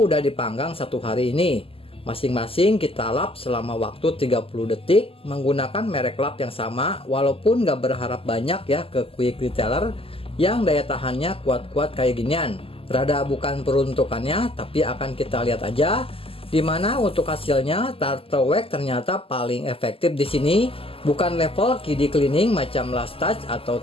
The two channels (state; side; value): late; right; 0.27 ms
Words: dipanggang 1 hari ini. Masing-masing kita lap selama waktu 30 detik menggunakan merek lap yang sama, walaupun gak berharap banyak ya ke Quick Detailer yang daya tahannya kuat-kuat kayak ginian. Rada bukan peruntukannya, tapi akan kita lihat aja Dimana untuk hasilnya Turtle Wax ternyata paling efektif di sini. Bukan level KD cleaning macam Last Touch atau